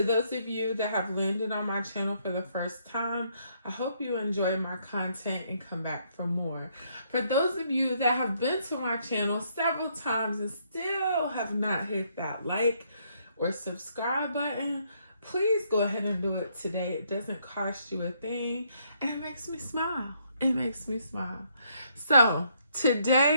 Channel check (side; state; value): both; inverted; correlation -0.71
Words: those of you that have landed on my channel for the first time, I hope you enjoy my content and come back for more. For those of you that have been to my channel several times and still have not hit that like or subscribe button, please go ahead and do it today. It doesn't cost you a thing and it makes me smile. It makes me smile. So